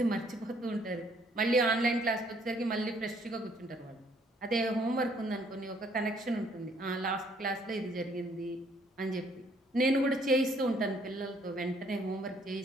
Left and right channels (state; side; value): normal; both; correlation 0.64